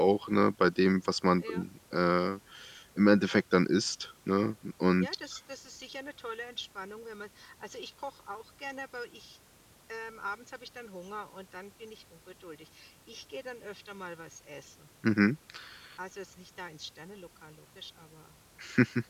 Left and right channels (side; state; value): both; identical; correlation 1.00